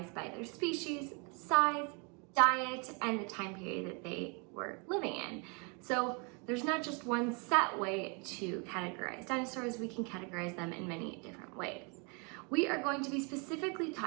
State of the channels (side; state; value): left; quieter; 34.1 dB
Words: by their species, size, diet, and the time period that they were living in. So there's not just one set way to categorize dinosaurs, we can categorize them in many different ways. We are going to be specifically